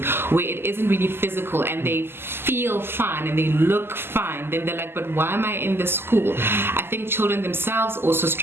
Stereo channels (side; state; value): left; late; 0.11 ms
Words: where it isn't really physical and they feel fine and they look fine, then they're like, but why am I in this school? I think children themselves also